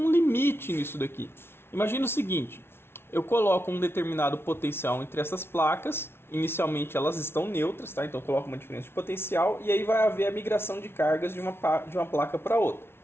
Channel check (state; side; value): late; right; 0.12 ms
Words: limite nisso daqui. Imagina o seguinte, eu coloco um determinado potencial entre essas placas, inicialmente elas estão neutras, tá? Então eu coloco uma diferença de potencial e aí vai haver a migração de cargas de uma placa para outra,